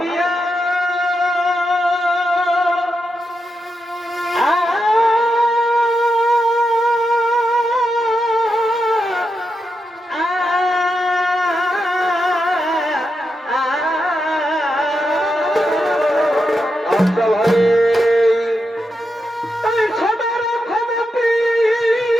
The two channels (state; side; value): normal; both; correlation 0.86